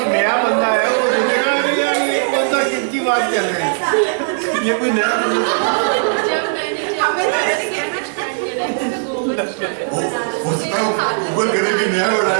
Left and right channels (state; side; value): silent; left; digital silence